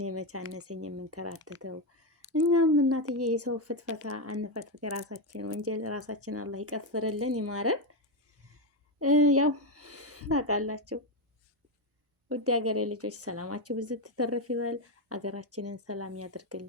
መቻነሰኝ የምንከራተተው እኛም እናትዬ የሰው ፍትፈታ አንፈትፍት። የራሳችን ወንጀል ራሳችን አላህ ይቀፍርልን ይማረን። ያው ታውቃላችሁ ውድ ሀገሬ ልጆች ሰላማችሁ ብዙ ትተረፍ ይበል። ሀገራችንን ሰላም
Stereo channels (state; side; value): normal; both; correlation 0.07